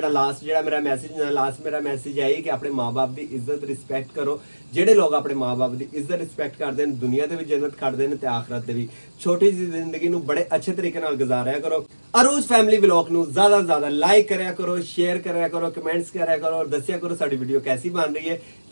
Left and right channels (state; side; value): inverted; both; correlation -1.00